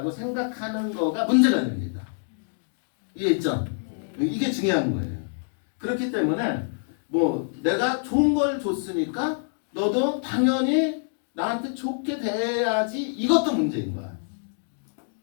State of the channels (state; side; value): silent; right; digital silence